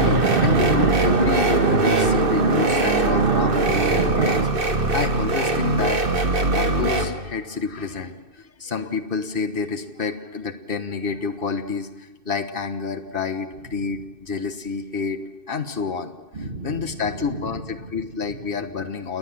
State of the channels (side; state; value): left; late; 2.6 ms